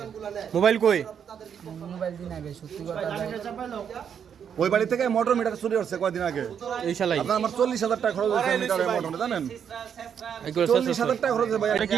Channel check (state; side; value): quieter; left; 7.9 dB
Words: মোবাইল কই? মোবাইল দিই নাই ভাই, সত্যি কথা ভাই। ওই বাড়ি থেকে মোটর মিটার চুরি করছে কয়দিন আগে। এই শালাই আপনার আমার 40,000 টাকা খরচ হয়েছে মিটারের মোটরে, জানেন? এগুলো 40,000 টাকা খরচ হয়েছে ভাই। এটা কি